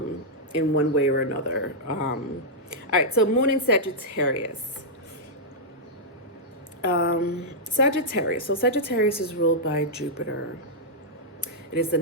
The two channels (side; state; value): both; normal; correlation -0.08